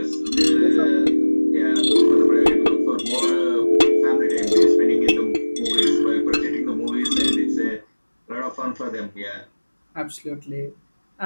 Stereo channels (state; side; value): inverted; both; correlation -1.00